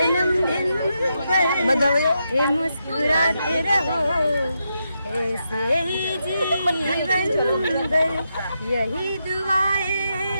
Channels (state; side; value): inverted; both; correlation -0.84